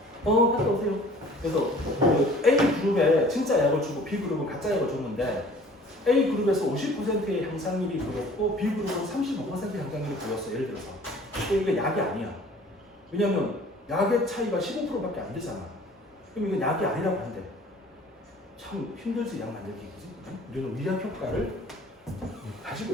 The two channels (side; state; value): both; normal; correlation 0.50